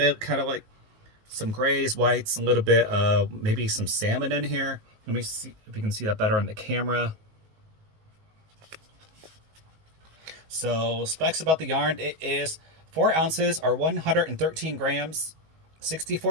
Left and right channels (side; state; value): left; late; 19 ms